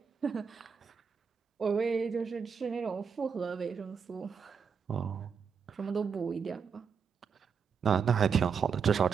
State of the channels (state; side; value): quieter; left; 6.3 dB